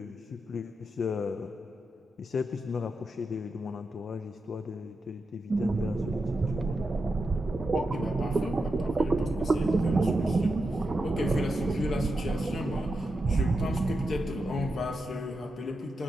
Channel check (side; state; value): both; normal; correlation 0.87